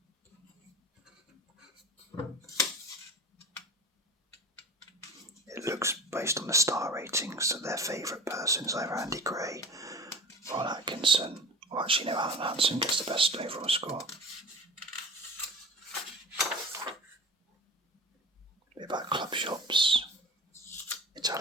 It looks based on the star ratings that their favourite person is either Andy Gray, Ron Atkinson, or actually no, Alan Hansen gets the best overall score. A bit about club shops,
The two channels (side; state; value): both; normal; correlation 0.34